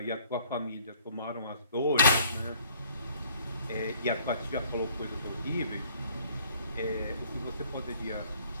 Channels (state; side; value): inverted; both; correlation -0.58